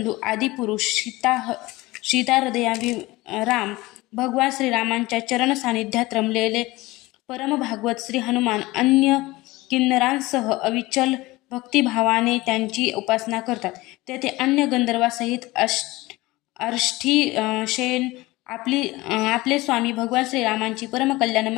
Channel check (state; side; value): quieter; right; 20.3 dB